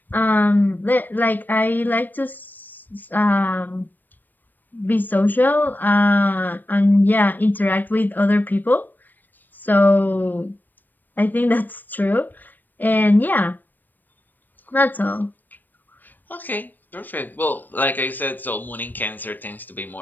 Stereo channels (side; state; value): right; late; 0.090 ms